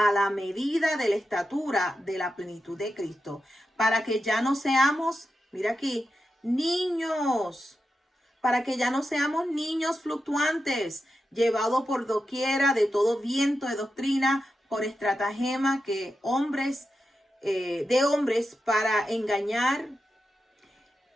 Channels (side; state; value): both; normal; correlation 0.89